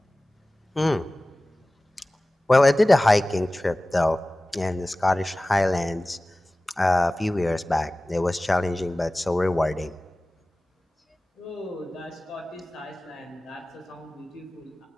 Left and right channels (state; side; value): normal; both; correlation 0.97